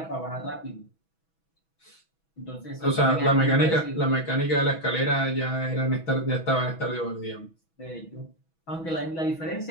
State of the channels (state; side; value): late; right; 6.1 ms